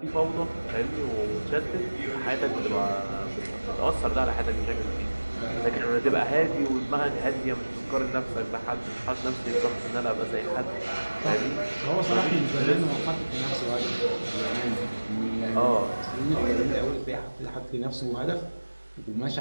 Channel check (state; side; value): inverted; both; correlation -1.00